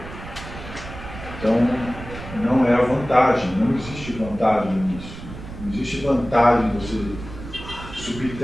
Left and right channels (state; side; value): noise; right; rumble, 12 dB below the sound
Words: Então, não é a vantagem, não existe vantagem nisso. Não existe vantagem você